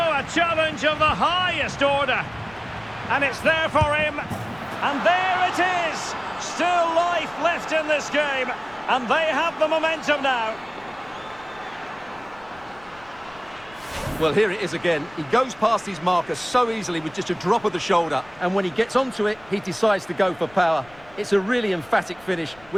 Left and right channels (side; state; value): left; noise; rumble, 25 dB below the sound